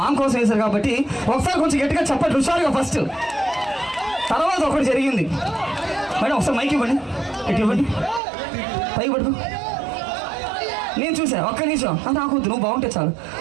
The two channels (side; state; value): left; drops out; at 8.2 s